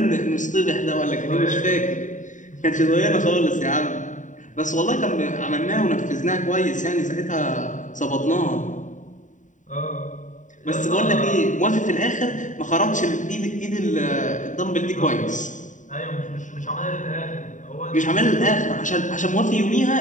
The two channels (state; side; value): late; right; 0.36 ms